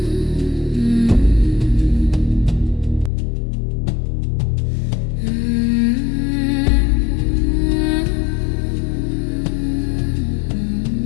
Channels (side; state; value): right; drops out; at 3.1 s